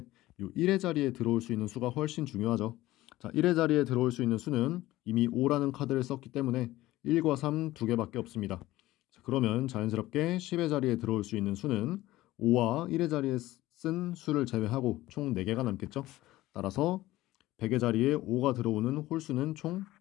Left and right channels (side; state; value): right; quieter; 16.8 dB